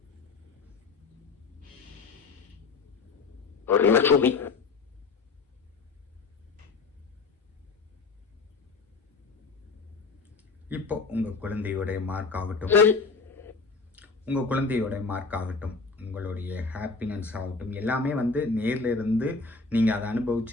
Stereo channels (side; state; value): right; quieter; 4.3 dB